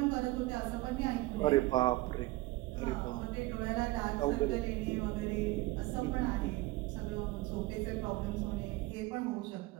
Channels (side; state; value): left; quieter; 19.9 dB